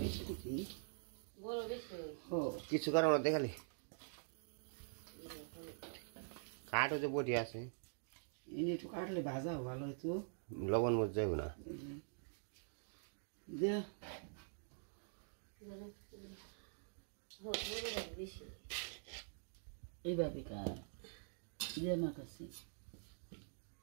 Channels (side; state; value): left; silent; digital silence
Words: দিবি। বড় বেশি ও কিছু করার মধ্যে খালি কাঠ হচ্ছে বটি আছে, এনে একটু কাটলে ভাজা ভালো হতো। লবণ মরিচ যাইব না। দে বেশি এইভাবে কাট দে আমার কাছে।